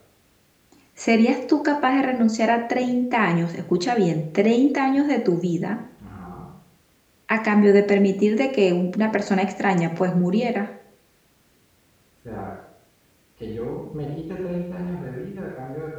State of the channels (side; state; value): both; identical; correlation 1.00